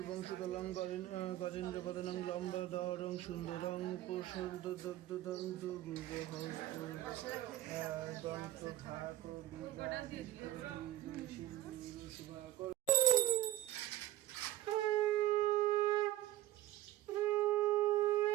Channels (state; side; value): quieter; left; 14.9 dB